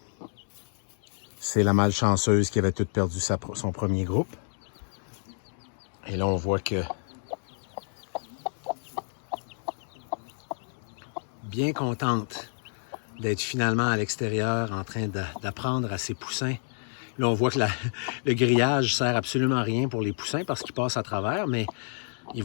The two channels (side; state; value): right; silent; digital silence